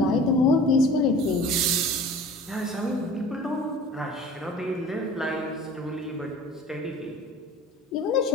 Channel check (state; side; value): normal; both; correlation 0.43